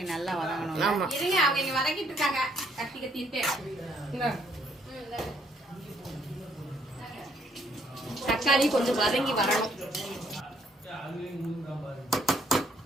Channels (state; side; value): normal; both; correlation 0.68